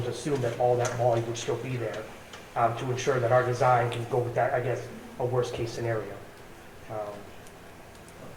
assume that all that volume would still be there to ensure that our design can go with that, I guess, a worst-case scenario.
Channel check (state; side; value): identical; both; correlation 1.00